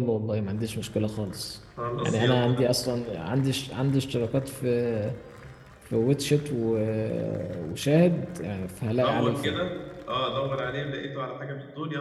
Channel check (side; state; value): both; identical; correlation 1.00